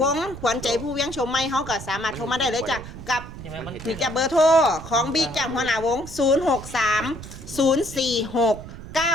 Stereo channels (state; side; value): noise; right; rumble, 13 dB below the sound